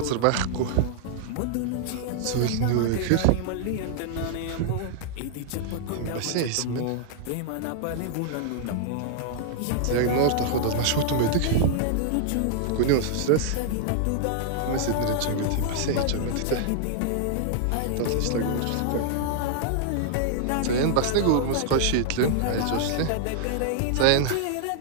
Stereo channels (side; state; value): both; different; correlation -0.01